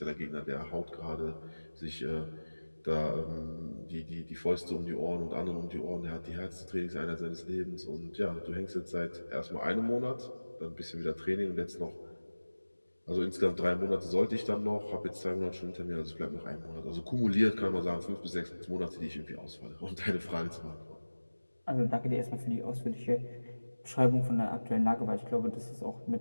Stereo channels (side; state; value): both; inverted; correlation -1.00